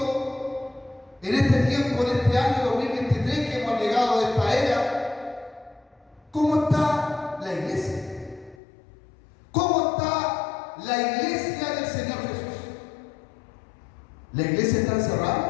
en este tiempo, en este año 2023 que hemos llegado a esta era. ¿Cómo está la iglesia? ¿Cómo está la iglesia del Señor Jesús? ¿La iglesia está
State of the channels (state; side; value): drops out; right; at 8.6 s